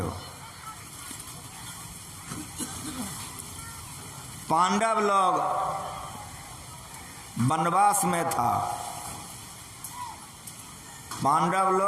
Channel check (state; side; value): identical; both; correlation 1.00